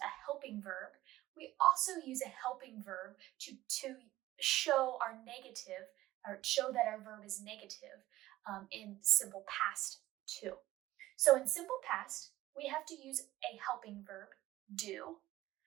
helping verb. We also use a helping verb to show our negative, or show that our verb is negative in simple past too. So in simple past, we have to use a helping verb, do,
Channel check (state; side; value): quieter; left; 15.9 dB